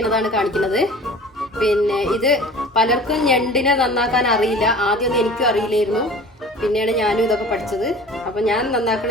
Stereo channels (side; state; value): both; normal; correlation 0.42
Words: കാണിക്കുന്നത്. പിന്നെ ഇത് പലർക്കും ഞണ്ടിനെ നന്നാക്കാൻ അറിയില്ല. ആദ്യമൊന്നും എനിക്കും അറിയില്ലായിരുന്നു. പിന്നെയാണ് ഞാനും ഇതൊക്കെ പഠിച്ചത്. അപ്പം ഞാൻ